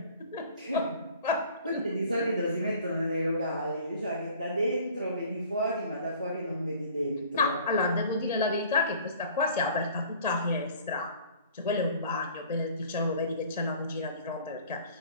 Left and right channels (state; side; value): inverted; both; correlation -0.50